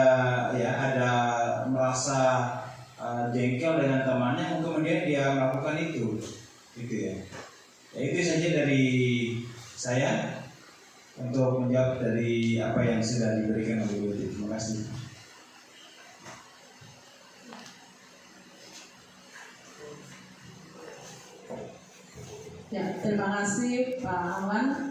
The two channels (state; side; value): identical; both; correlation 1.00